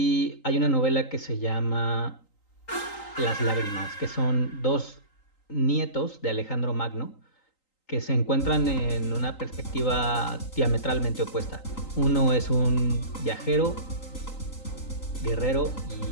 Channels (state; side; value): late; right; 3.8 ms